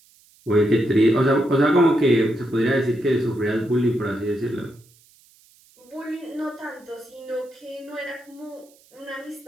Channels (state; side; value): noise; right; hiss, 30 dB below the sound